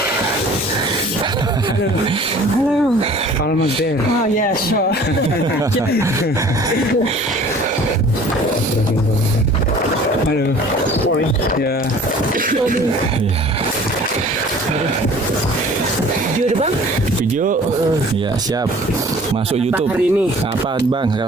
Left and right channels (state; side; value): normal; both; correlation 0.48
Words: Almost there. Oh yeah, sure. Halo. Ya. Ya. Video deh bang. Video. Ya siap. Masuk YouTube. Hari ini. Apa bang